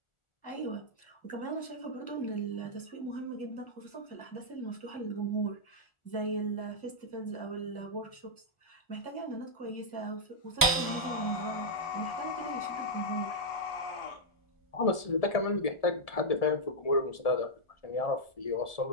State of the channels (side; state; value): right; late; 1.4 ms